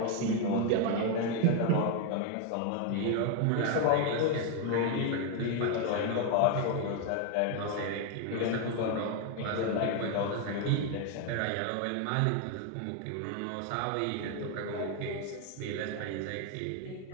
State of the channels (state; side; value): different; both; correlation 0.01